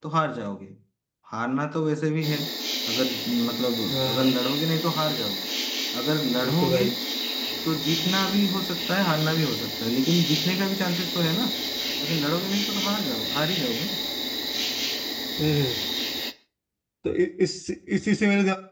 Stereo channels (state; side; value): identical; both; correlation 1.00